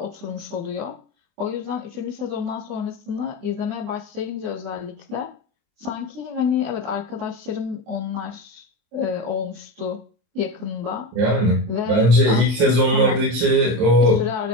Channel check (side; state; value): left; late; 24 ms